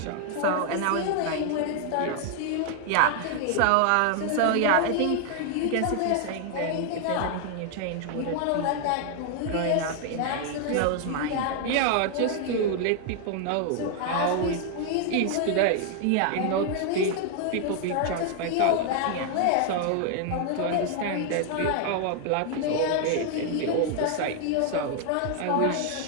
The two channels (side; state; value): both; different; correlation 0.00